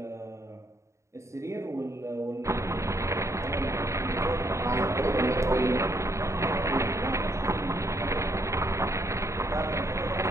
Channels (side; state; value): left; late; 0.14 ms